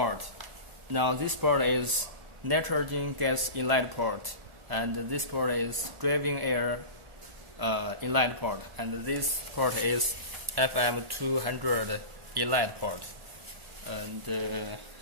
Now this port is nitrogen gas inlet port, and this port is driving air inlet port, and this port is FM200 inlet port. And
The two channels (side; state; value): left; late; 1.4 ms